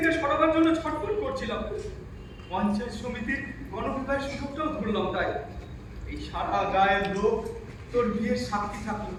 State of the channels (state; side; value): identical; both; correlation 1.00